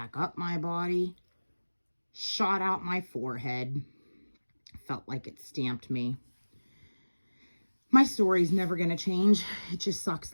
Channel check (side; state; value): both; inverted; correlation -1.00